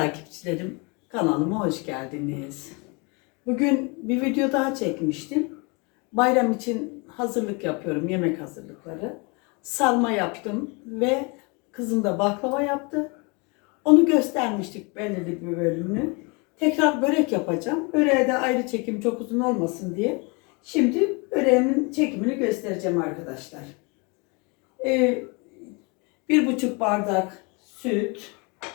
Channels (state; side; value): quieter; right; 30.3 dB